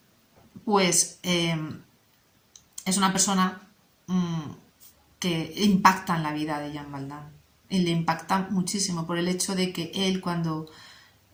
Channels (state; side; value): identical; both; correlation 1.00